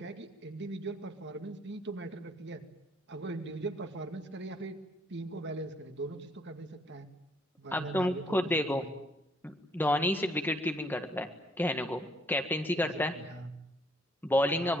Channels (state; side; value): normal; both; correlation 0.66